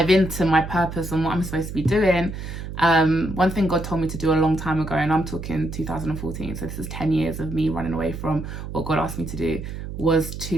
into my purpose and what I'm supposed to be doing, one thing God told me to do a long time ago, and I'm talking 2014, so this is 10 years of me running away from what God asked me to do, was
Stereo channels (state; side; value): noise; right; hum, 8 dB below the sound